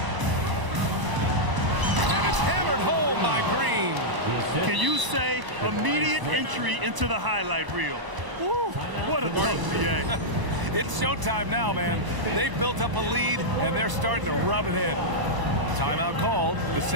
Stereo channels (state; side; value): late; left; 1.0 ms